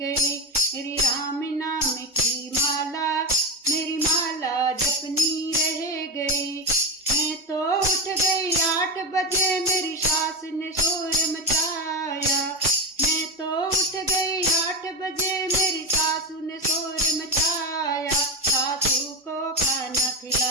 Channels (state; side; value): normal; both; correlation 0.18